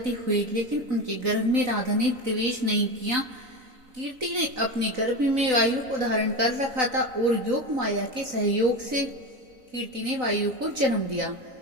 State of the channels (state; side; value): late; left; 4.0 ms